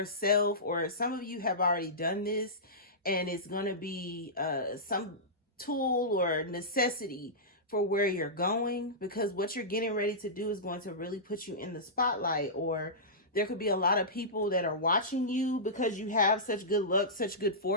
or some of you have already done this, and it's going to be some tool or necessity for where you're going, because what you're getting ready to do is going to really put you in the spotlight. Or there could be a lot of people that are watching you because you have such good luck, such good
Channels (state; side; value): normal; both; correlation -0.17